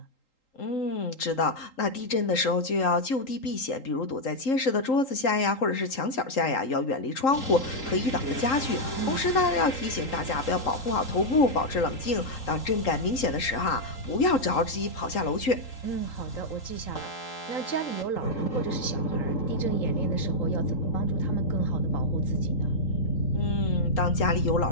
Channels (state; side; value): late; right; 3.8 ms